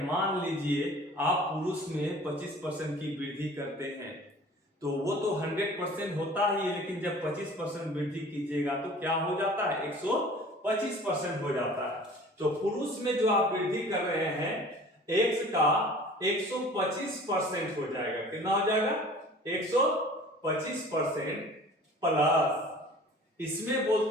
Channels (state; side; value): normal; both; correlation 0.46